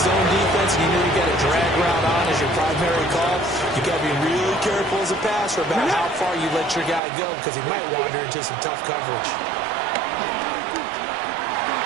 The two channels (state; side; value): drops out; left; at 7.0 s